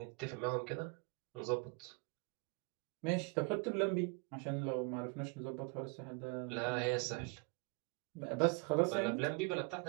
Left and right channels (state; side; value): quieter; left; 31.5 dB